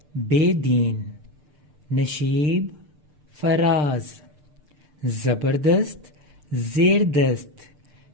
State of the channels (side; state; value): left; late; 6.7 ms